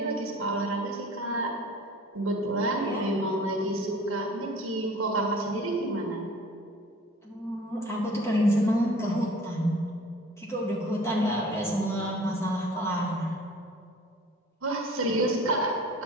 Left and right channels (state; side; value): normal; both; correlation 0.46